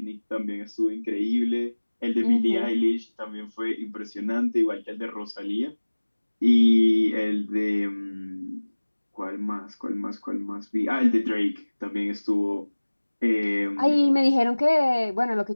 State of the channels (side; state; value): both; inverted; correlation -1.00